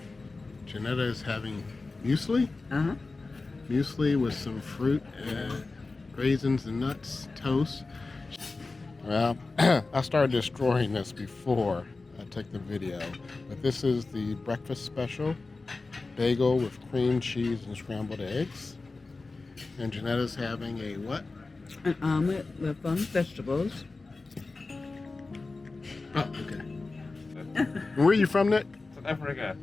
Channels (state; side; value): quieter; right; 3.6 dB